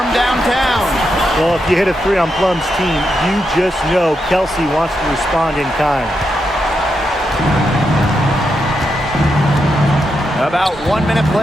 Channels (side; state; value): both; normal; correlation 0.84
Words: downtown. Well, if you hit a 3 on Plum's team, you just know Kelsey wants to respond in kind. About 1 minute